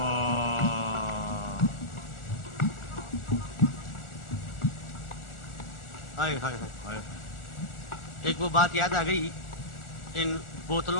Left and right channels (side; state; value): right; late; 1.4 ms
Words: ایک وہ بات یاد آ گئی ان